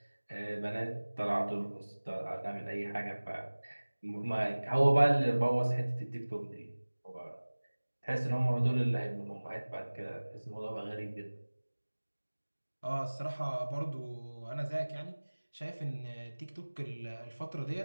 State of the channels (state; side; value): inverted; both; correlation -1.00